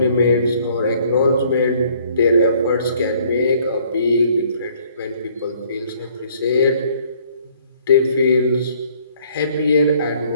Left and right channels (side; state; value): both; inverted; correlation -0.61